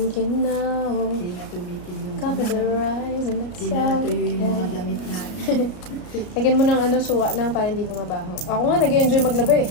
now. Hindi na tumikil yung Cover the rise and that's Hindi na natuyo yung mga okay. damit natin. Lagyan mo ng suka lang para hindi bumabaho. Ako nga, nag-enjoy maglaba eh.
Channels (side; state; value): right; late; 33 ms